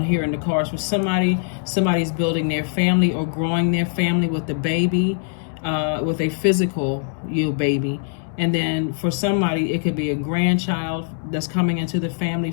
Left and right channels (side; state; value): right; silent; 64 dB below the other